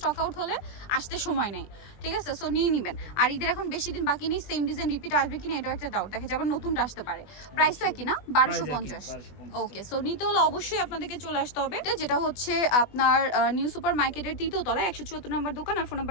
আউট হলে আসতে সময় নেই, ঠিক আছে। সো নিয়ে নেবেন। আর ঈদের এখন বেশি দিন বাকি নেই, সেম ডিজাইন রিপিট আসবে কিনা এটাও একটা ডাউট দেখে, যেমন নতুনটা আসতে পারে। প্রাইস তো একই না, 1250। ওকে, সো নিতে হলে অবশ্যই আপনাদেরকে চলে আসতে হবে, যেটা হচ্ছে আপনার নিউ সুপার মার্কেটের 3য় তলায় 174 নম্বর দোকান। আর ফোন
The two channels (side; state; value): right; late; 20 ms